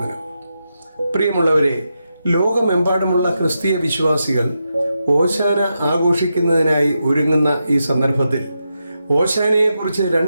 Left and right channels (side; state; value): both; inverted; correlation -0.86